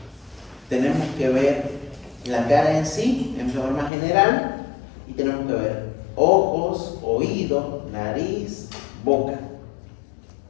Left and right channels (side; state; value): right; drops out; at 3.9 s